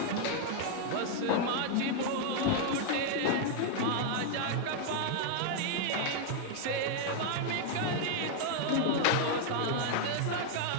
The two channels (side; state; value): both; different; correlation 0.00